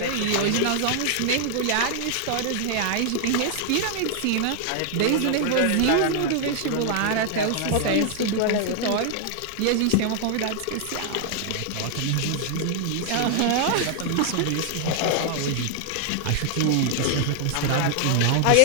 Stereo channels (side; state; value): both; different; correlation 0.00